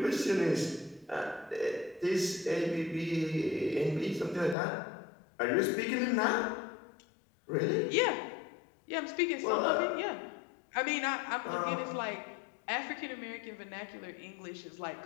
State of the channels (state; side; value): drops out; right; at 4.5 s